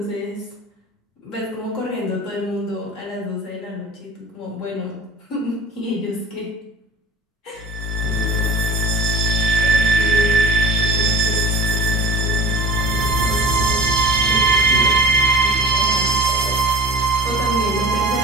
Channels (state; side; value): normal; both; correlation 0.37